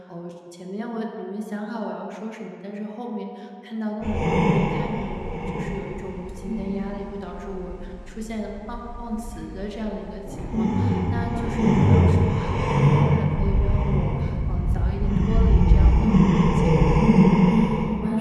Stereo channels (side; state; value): both; identical; correlation 1.00